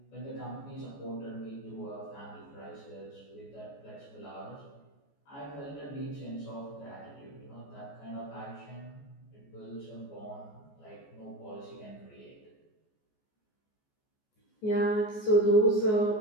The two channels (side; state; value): right; late; 14 ms